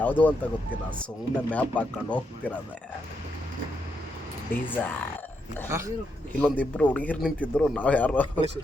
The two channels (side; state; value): both; normal; correlation 0.81